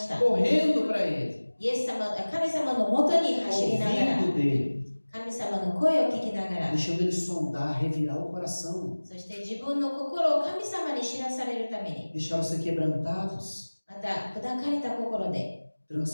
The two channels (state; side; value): inverted; both; correlation -1.00